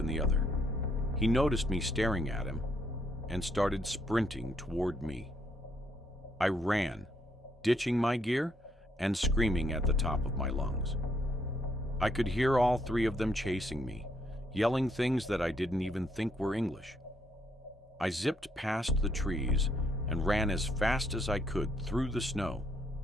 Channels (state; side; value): normal; both; correlation 0.73